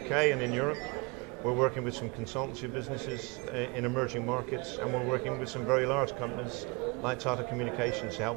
and in Europe. We're working with some consultancy businesses in emerging markets, and we're working with some very large companies like Tata Communications to help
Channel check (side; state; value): left; quieter; 28.4 dB